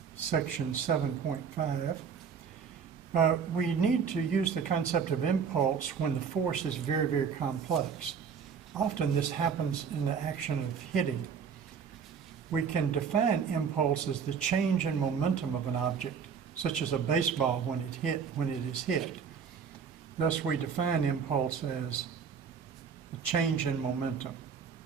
section 7.5. We need to use the concept of impulse when the force is very, very complex. Often this happens in the action of hitting. We can define impulse as the change in momentum of an object, such as a baseball when it is hit. Thus, we define impulse as a change in momentum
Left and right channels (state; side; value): quieter; left; 6.6 dB